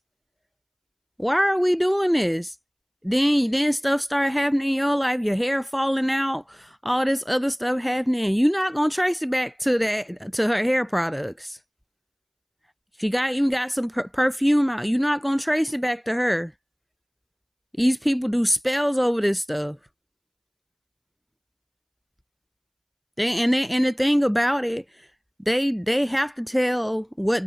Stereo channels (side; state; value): both; identical; correlation 1.00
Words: Why are we doing this? Then stuff start happening in your life, your hair falling out, all this other stuff happening. You're not gonna trace it back to her hair products. She even got some perfume out. You're not gonna trace it back to her. These people do spells over this stuff. And the thing about it, they have to tell what